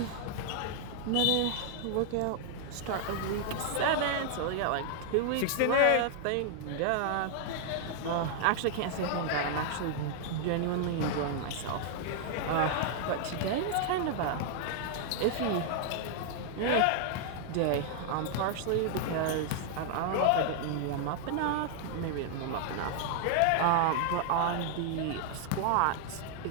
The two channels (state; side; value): different; both; correlation 0.00